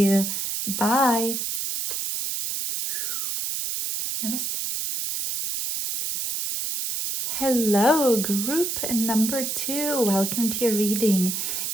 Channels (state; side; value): noise; right; hiss, 2 dB below the sound